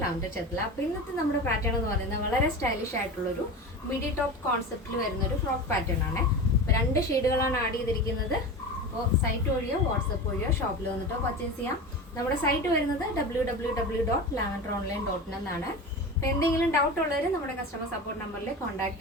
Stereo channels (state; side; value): normal; both; correlation 0.28